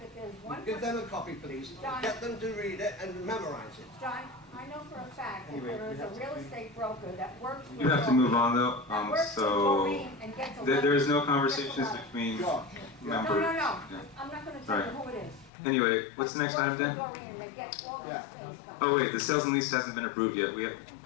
there's one Give person, them a copy, please. John. Get them to read it and memorize it. John, I know for a fact that there is a real estate broker that works with. You have to move on though, That works with so Maureen and gets a. there is no letter. conversations Gets a letter. between George. members. No, Yeah. I'm not gonna tell you Right. who it is. Anyway, what's the next item Works with then? Doreen, they get all Yeah. these things done. Oh wait, the sales and lease hasn't been approved yet.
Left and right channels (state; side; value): drops out; right; at 15.5 s